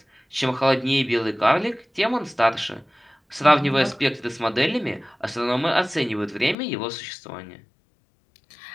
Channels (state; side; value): drops out; right; at 6.6 s